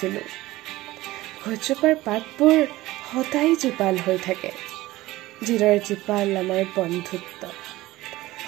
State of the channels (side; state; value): left; quieter; 17.8 dB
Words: গছজোপাৰ পাতবোৰ সদায় জীপাল হৈ থাকে যিদৰে জীপাল আমাৰ বন্ধুত্ব